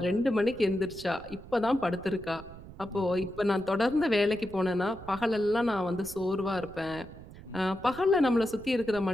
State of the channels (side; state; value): right; noise; rumble, 17 dB below the sound